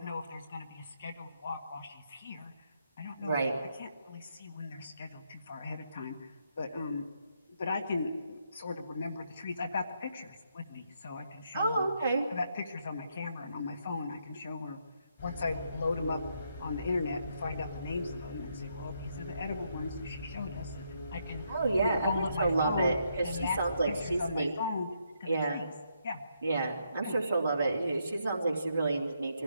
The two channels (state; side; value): inverted; both; correlation -0.77